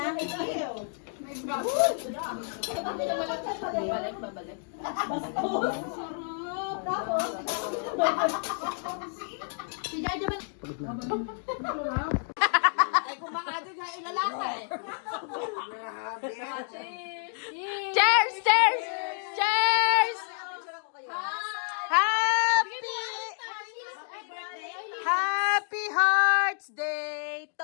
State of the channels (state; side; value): silent; right; 58 dB below the other